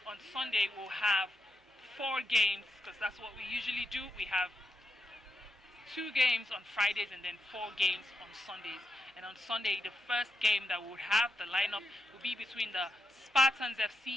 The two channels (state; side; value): normal; both; correlation 0.86